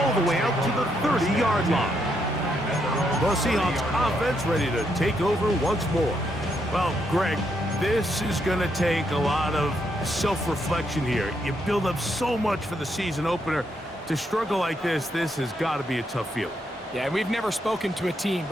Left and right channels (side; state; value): both; normal; correlation 0.77